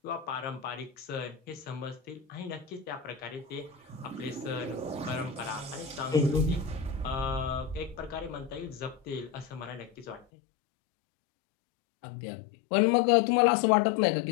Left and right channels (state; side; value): drops out; right; at 10.2 s